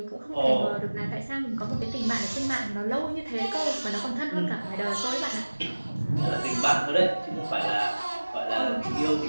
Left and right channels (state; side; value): inverted; both; correlation -1.00